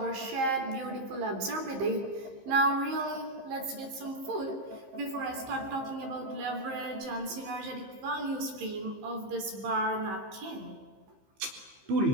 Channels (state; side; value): late; left; 15 ms